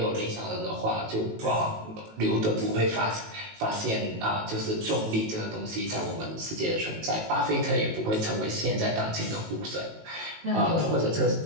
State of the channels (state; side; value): late; left; 18 ms